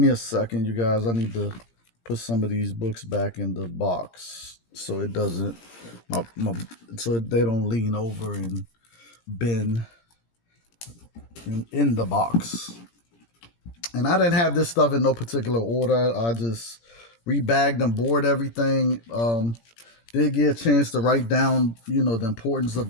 a second, you guys. I need to put some of these books back in the box. so it doesn't so they don't lean over and bend in the box. And I didn't have this stuff in no particular order. I just rebagged and board everything. Did get a chance to write down, the importance of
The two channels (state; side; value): late; right; 17 ms